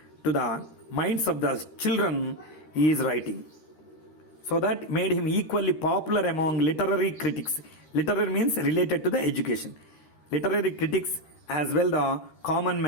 the minds of the children he is writing. So that made him equally popular among literary critics. Literary means related to the education. Literary critics as well the common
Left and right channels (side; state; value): right; late; 13 ms